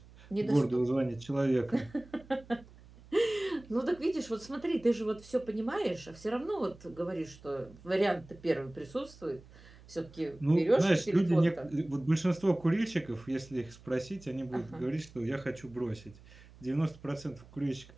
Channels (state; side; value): noise; right; hum, 22 dB below the sound